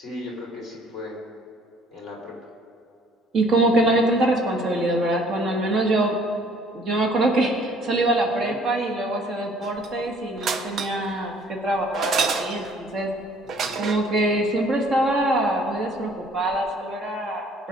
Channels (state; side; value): normal; both; correlation 0.57